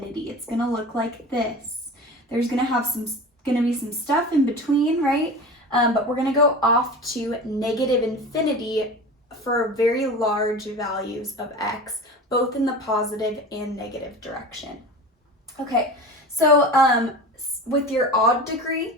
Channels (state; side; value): normal; both; correlation 0.33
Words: It's going to look like this. There's going to be some stuff in between, right? But we're going to go off to negative infinity for very large values of x, both in the positive and negative direction. Okay, so with your odd degree,